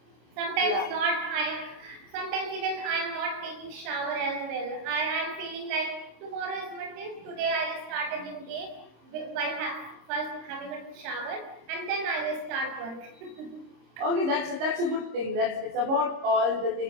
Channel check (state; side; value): late; left; 26 ms